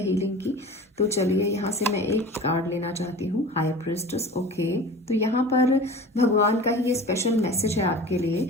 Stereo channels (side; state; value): both; normal; correlation 0.37